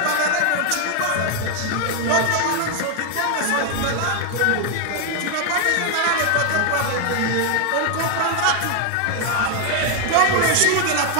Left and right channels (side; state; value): both; different; correlation 0.00